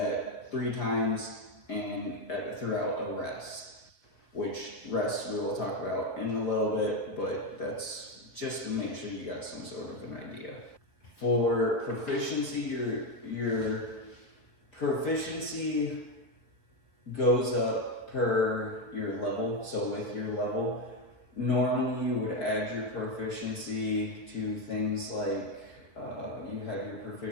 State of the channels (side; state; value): right; late; 5.2 ms